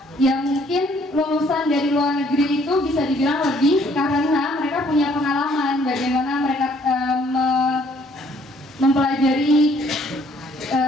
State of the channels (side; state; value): both; normal; correlation 0.63